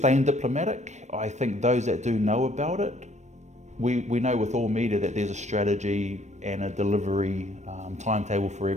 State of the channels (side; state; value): left; late; 0.34 ms